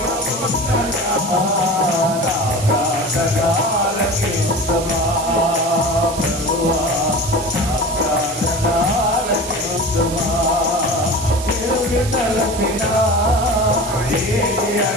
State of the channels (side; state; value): right; noise; hiss, 11 dB below the sound